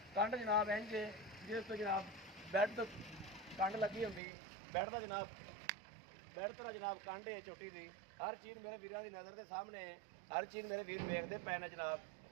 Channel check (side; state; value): left; drops out; at 4.2 s